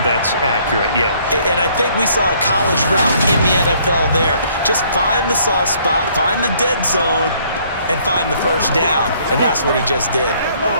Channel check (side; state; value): both; inverted; correlation -0.63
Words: That's accurate, yeah. And I think we saw a college route in the NFL there. Just find the soft spot, find the dead zone, and find the first down. And that's what he just did.